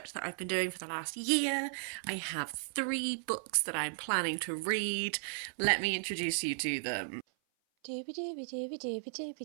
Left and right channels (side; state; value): left; silent; 54 dB below the other